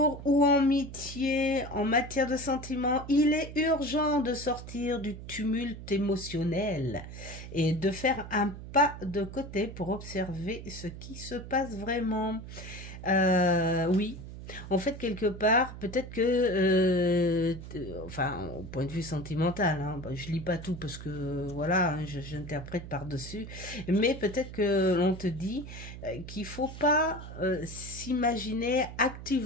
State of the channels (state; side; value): noise; right; hum, 12 dB below the sound